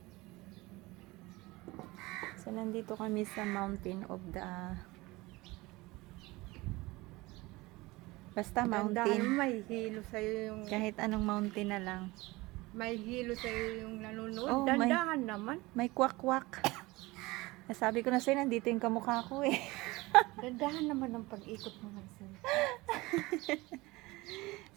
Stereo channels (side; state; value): left; quieter; 21.5 dB